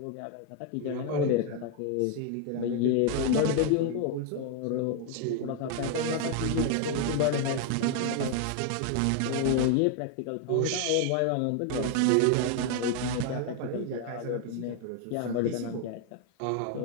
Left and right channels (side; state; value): both; different; correlation 0.00